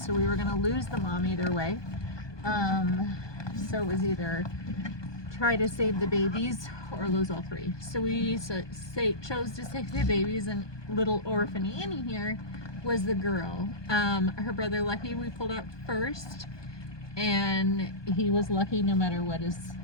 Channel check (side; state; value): right; late; 1.2 ms